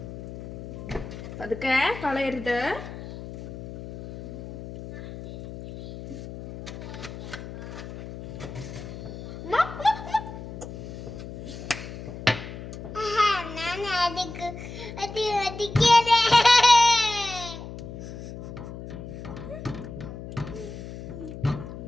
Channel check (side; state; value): left; noise; hum, 11 dB below the sound